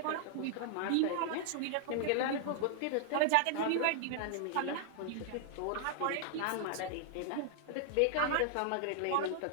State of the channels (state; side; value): different; both; correlation 0.00